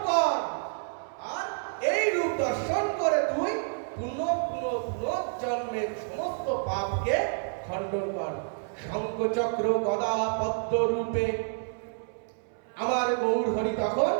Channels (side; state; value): left; silent; 59 dB below the other